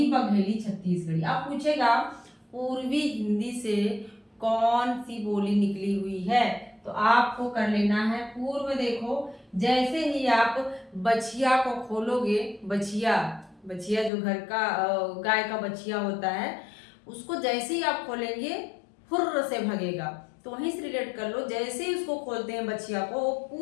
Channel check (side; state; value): right; drops out; at 14.1 s